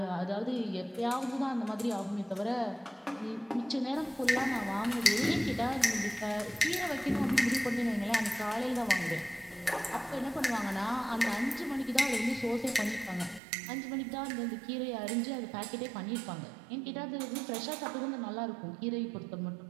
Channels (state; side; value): drops out; left; at 13.4 s